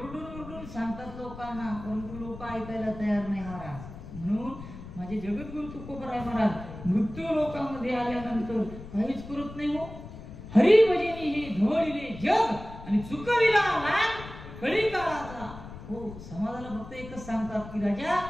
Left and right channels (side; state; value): left; noise; rumble, 13 dB below the sound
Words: परंतु लोक ऐकायला तयार नाही महाराज. म्हणून माझे जगद्गुरु तुकोबराय महाराज मृत्यू लोकांमध्ये आल्यानंतर काहीच करत नाही. हो हरिभजनी हे धवळिले जग आणि चुकविला लहान कळी काळाचा. हो समाजाला फक्त एकच सांगतात की राजा